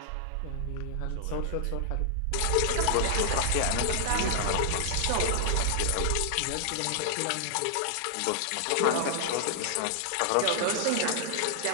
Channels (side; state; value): both; different; correlation 0.00